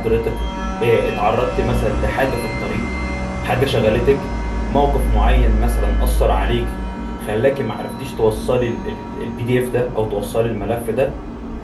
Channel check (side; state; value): both; identical; correlation 1.00